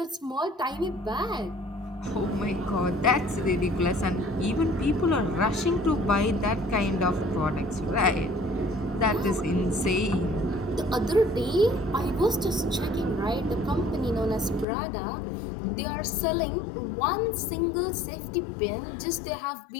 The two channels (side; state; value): right; drops out; at 14.7 s